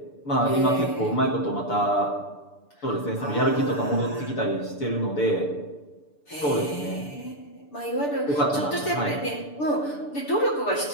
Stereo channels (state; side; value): late; right; 6.8 ms